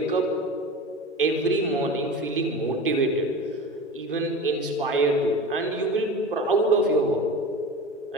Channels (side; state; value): both; normal; correlation 0.32